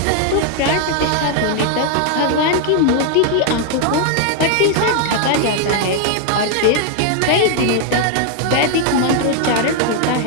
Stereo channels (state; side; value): different; both; correlation 0.00